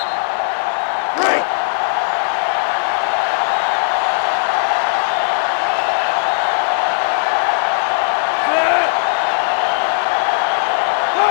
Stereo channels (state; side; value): silent; right; digital silence